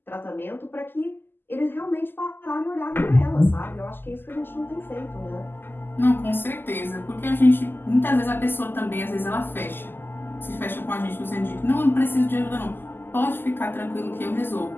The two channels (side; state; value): right; late; 0.097 ms